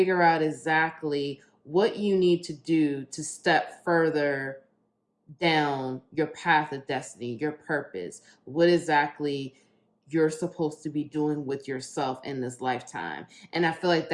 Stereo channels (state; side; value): identical; both; correlation 1.00